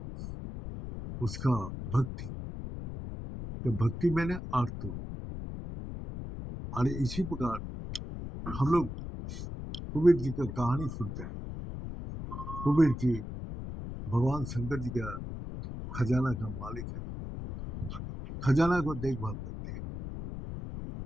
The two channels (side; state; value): left; noise; rumble, 8 dB below the sound